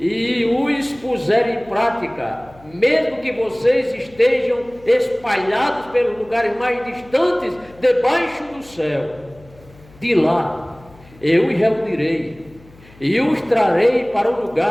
os puserem em prática, mesmo que vocês estejam espalhados pelos lugares mais distantes, debaixo do céu, de lá eu os reunirei e os trarei para o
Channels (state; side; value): noise; left; hum, 25 dB below the sound